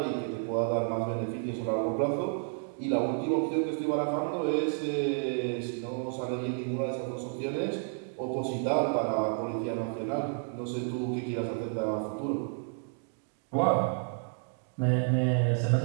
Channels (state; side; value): silent; left; 57 dB below the other